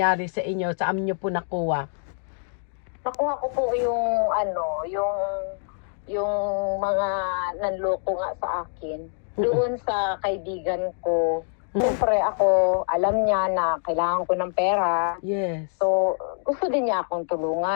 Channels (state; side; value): silent; right; 62 dB below the other